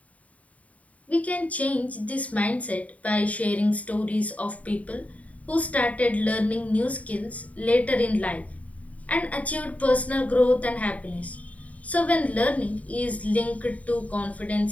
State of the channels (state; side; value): late; right; 0.069 ms